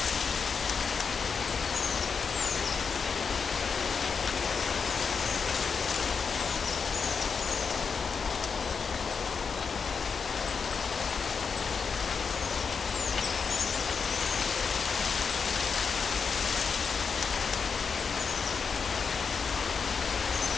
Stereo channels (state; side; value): quieter; right; 5.7 dB